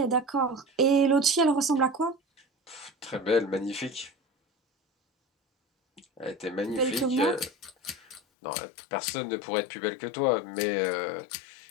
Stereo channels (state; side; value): drops out; right; at 8.2 s